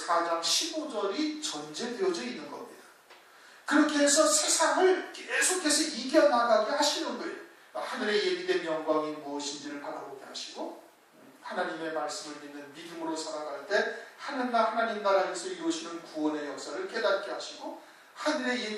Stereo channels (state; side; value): identical; both; correlation 1.00